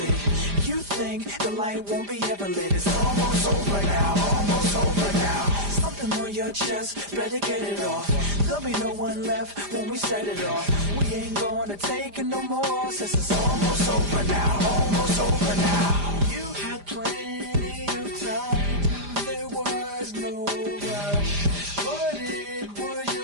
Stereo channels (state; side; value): late; left; 5.0 ms